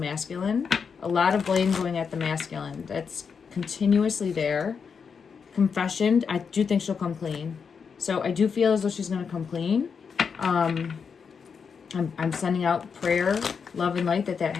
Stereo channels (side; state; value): right; quieter; 6.1 dB